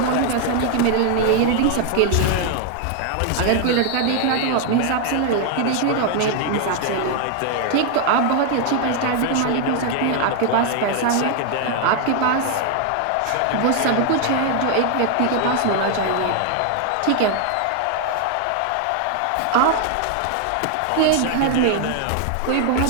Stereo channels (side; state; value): both; different; correlation 0.00